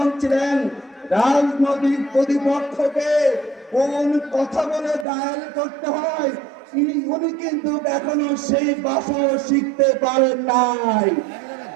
ছিলেন, রাজনৈতিক প্রতিপক্ষকে কোন কথা বলে ডায়াল করতে হয় উনি কিন্তু এখনো সেই ভাষা শিখতে পারেন নাই।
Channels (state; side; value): drops out; left; at 5.1 s